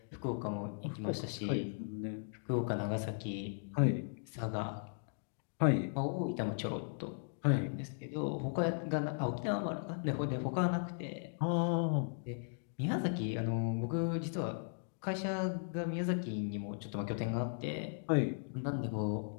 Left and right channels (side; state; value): right; silent; digital silence